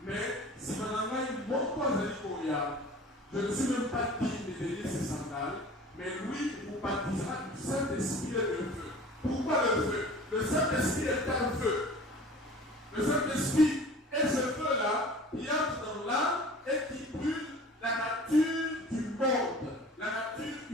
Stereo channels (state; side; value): normal; both; correlation 0.43